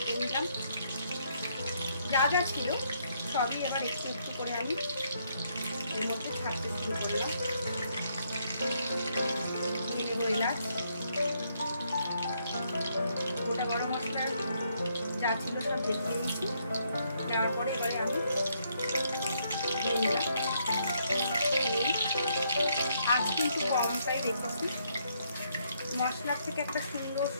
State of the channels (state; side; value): inverted; both; correlation -0.73